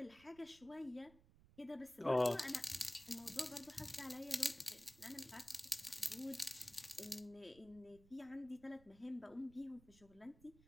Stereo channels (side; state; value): right; noise; rumble, 24 dB below the sound